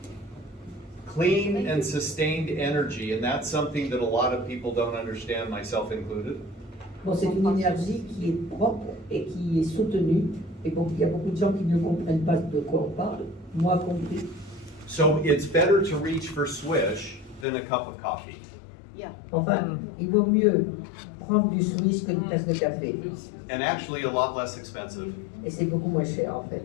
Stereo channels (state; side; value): drops out; right; at 17.4 s